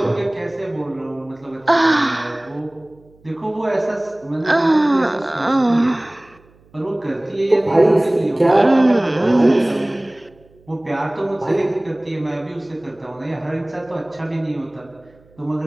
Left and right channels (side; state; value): right; noise; hum, 30 dB below the sound